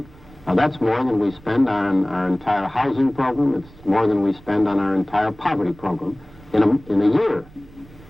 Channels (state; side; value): noise; right; rumble, 23 dB below the sound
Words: Now, that's more than we spend on our entire housing program. It's more than we spend on our entire poverty program in a year.